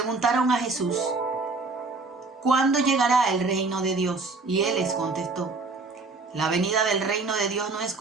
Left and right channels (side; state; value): left; quieter; 3.8 dB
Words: a Jesús, ¿cuándo llegará el reino de Dios? Y Él les contestó, la venida del reino de Dios no es